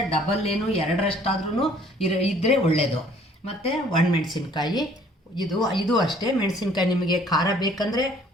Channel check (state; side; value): normal; both; correlation 0.57